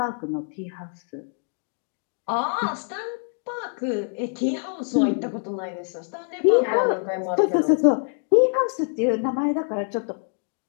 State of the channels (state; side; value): silent; right; 57 dB below the other